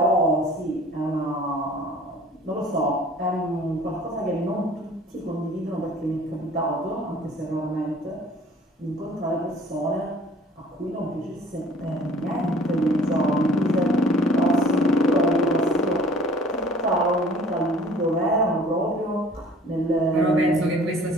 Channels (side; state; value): both; normal; correlation 0.51